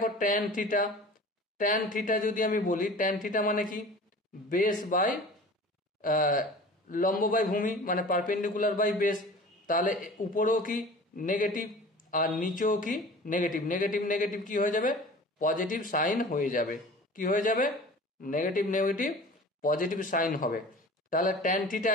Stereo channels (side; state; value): both; normal; correlation 0.41